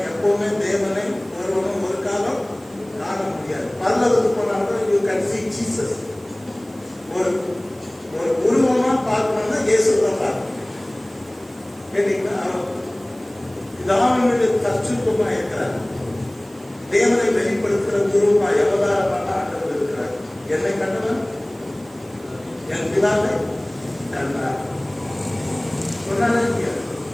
எப்பவுமே தேவனை ஒருவனும் ஒரு காலம் காண முடியாது. பரலோகத்துக்கு போனாலும் யூ கேன் see Jesus. ஒரு உருவமா பார்க்கணும்னா இயேசுவை பார்க்கணும். கேட்டீங்கன்னா அவனுடைய தற்சுருப்பமா இருக்கிறார். தேவனை வெளிப்படுத்துகிற குருவா அவதாரமான ஆண்டவர் இருக்கிறார். என்னை கண்டவன் என் பிதாவை கண்டார் சொன்னாலே,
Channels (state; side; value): noise; right; hiss, 26 dB below the sound